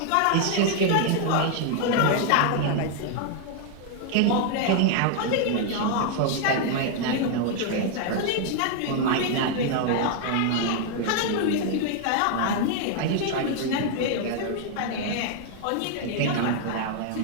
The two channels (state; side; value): different; both; correlation 0.00